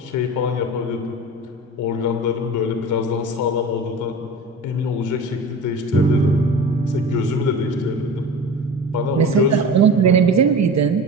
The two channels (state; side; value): normal; both; correlation 0.34